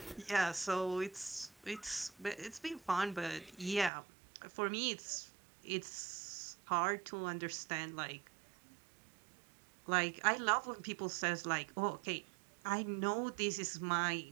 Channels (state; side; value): drops out; left; at 3.9 s